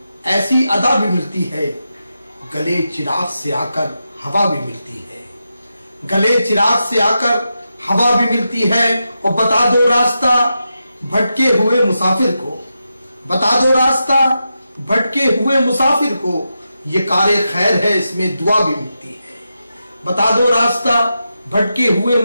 ایسی ادا بھی ملتی ہے، گلے چراغ سے آ کر ہوا بھی ملتی ہے، گلے چراغ سے آ کر ہوا بھی ملتی ہے. اور بتا دو راستہ بھٹکے ہوئے مسافر کو، بتا دو راستہ بھٹکے ہوئے مسافر کو، یہ کار خیر ہے اس میں دعا بھی ملتی ہے. بتا دو راستہ بھٹکے ہوئے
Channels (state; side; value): inverted; both; correlation -0.88